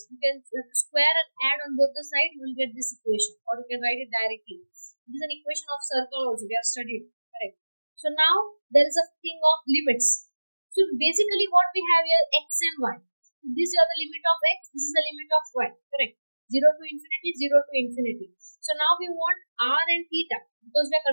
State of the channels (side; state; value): both; inverted; correlation -1.00